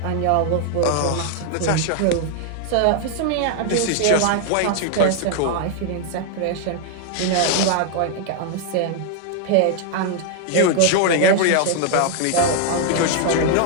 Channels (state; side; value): different; both; correlation 0.00